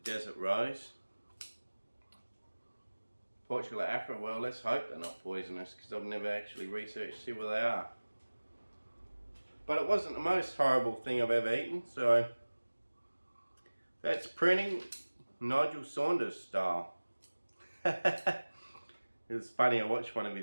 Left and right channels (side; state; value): both; inverted; correlation -1.00